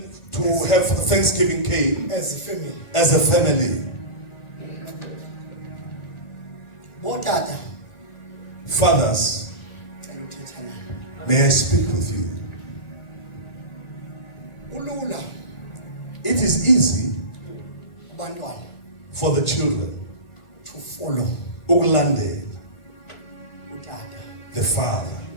to have Thanksgiving came as a family. as a family. Botata, Fathers, ngicela uthetha naye. may I speak with you? Ulula It is easy kubantwana for the children to follow ukulandela utata the father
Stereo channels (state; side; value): late; right; 1.4 ms